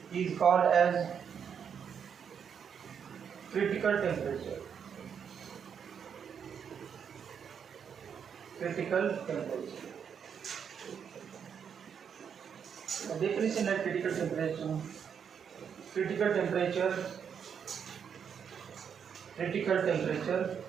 is called as critical temperature. Critical temperature. The definition of critical temperature. Critical temperature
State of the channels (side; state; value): left; quieter; 7.4 dB